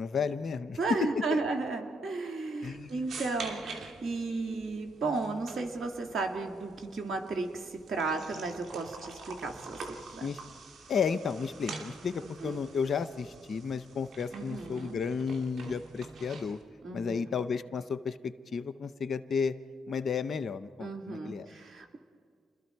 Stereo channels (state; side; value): normal; both; correlation 0.73